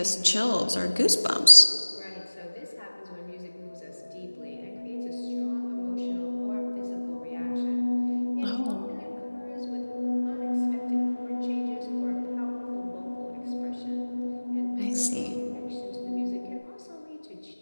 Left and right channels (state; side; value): inverted; both; correlation -1.00